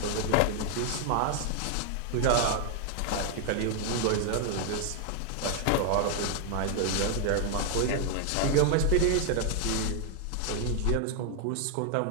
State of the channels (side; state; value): both; different; correlation 0.00